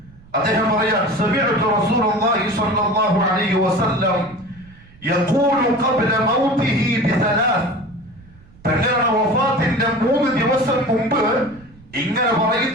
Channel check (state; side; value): noise; right; rumble, 24 dB below the sound